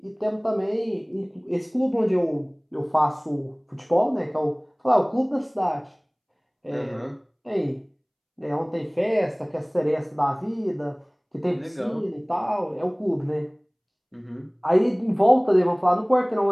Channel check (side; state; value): both; identical; correlation 1.00